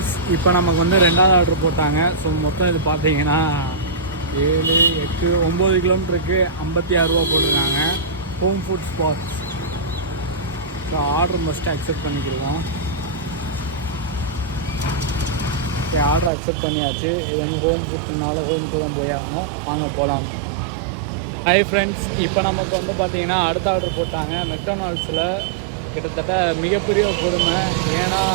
இப்போ நமக்கு வந்து ரெண்டாவது ஆர்டர் போட்டாங்க. ஸோ மொத்தம் இது பார்த்தீங்கன்னா 7, 8, 9 கிலோமீட்டருக்கு 56 ரூபா போட்டிருக்காங்க. Home food spots. So order must accept பண்ணிக்கிடுவோம். ஓகே, ஆர்டர் அக்செப்ட் பண்ணியாச்சு. இது வந்து ஹோம் ஃபுட்னால ஹோமுக்கு தான் போய் ஆகணும். வாங்க போகலாம். ஹாய் ஃப்ரெண்ட்ஸ், இப்போ நமக்கு வந்து பார்த்தீங்கன்னா அடுத்த ஆர்டர் போட்டாங்க. மெக்டானல்ட்ஸில் கிட்டத்தட்ட மிகப்பெரிய கொடுமை. ஏன்னா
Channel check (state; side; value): drops out; left; at 16.3 s